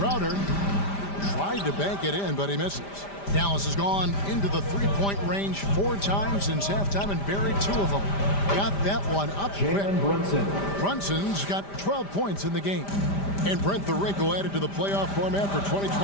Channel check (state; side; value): late; right; 5.0 ms